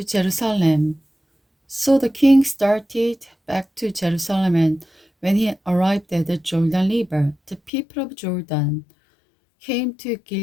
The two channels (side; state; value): right; drops out; at 7.7 s